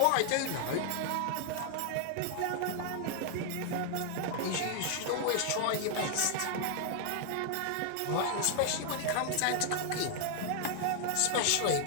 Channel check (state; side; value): different; both; correlation 0.00